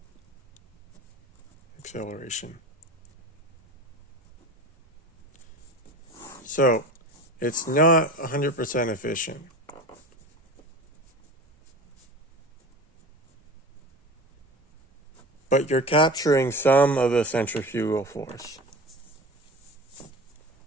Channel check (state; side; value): normal; both; correlation 0.34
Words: acceleration. So it's not 100% efficient. But you're capturing some of the centrifugal force.